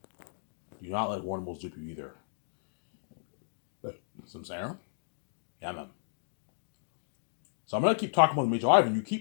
Do not let Warner Bros. Dupe you either. Some Sarah? Yeah, man. So I'm gonna keep talking about the Major. Ivan, you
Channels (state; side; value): silent; right; digital silence